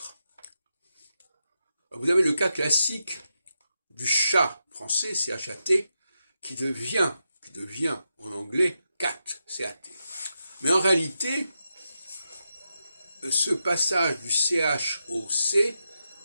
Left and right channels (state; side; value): inverted; both; correlation -0.86